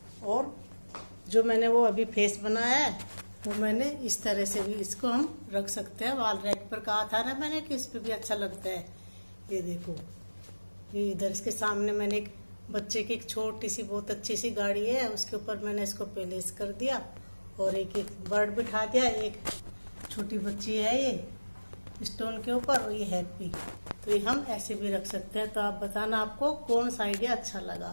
और जो मैंने वो अभी फेस बनाया है वो मैंने इस तरह से भी इसको हम रख सकते हैं। वॉल रैक पर कहा था ना मैंने कि इस पे भी अच्छा लगता है। ये देखो ये इधर इसके सामने मैंने एक बच्चे की एक छोटी सी बहुत अच्छी सी गाड़ी है, उसके ऊपर मैंने इसको पेलेस कर दिया और एक बर्ड बिठा दिया। एक छोटी बच्ची है ये स्टोन के ऊपर और ये हैप्पी। तो ये हम ऐसे भी रख सकते हैं। तो आप बताना आपको कौन सा आइडिया अच्छा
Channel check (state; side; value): inverted; both; correlation -1.00